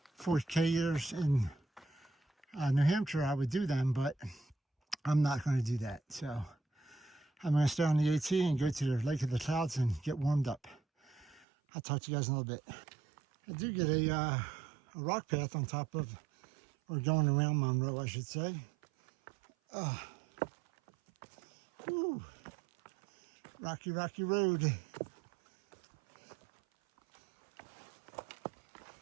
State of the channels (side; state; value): left; drops out; at 11.5 s